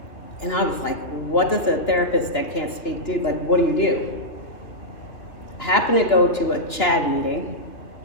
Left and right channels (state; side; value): late; right; 2.9 ms